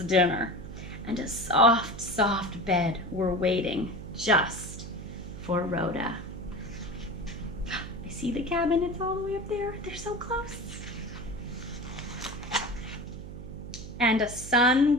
and a soft, soft bed were waiting just for Rhoda. I see the cabin, it's all the way up there. They're so close. And a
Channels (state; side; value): noise; right; hum, 11 dB below the sound